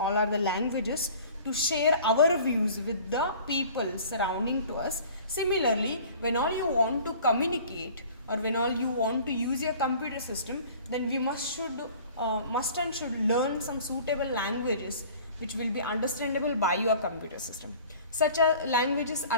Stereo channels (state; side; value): inverted; both; correlation -0.47